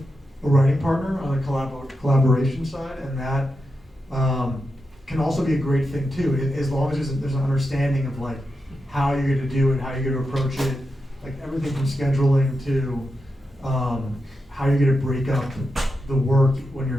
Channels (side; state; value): both; normal; correlation 0.88